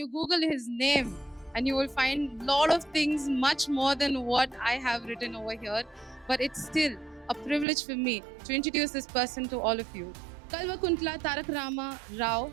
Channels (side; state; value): left; drops out; at 7.7 s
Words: Google his name, and you will find a lot of things much more than what I have written over here. But it's still a privilege for me to introduce this person to all of you. Kalvakuntla Tarak Rama Rao,